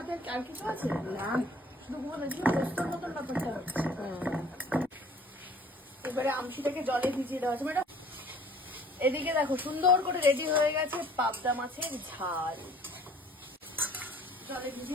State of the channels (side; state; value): both; normal; correlation 0.53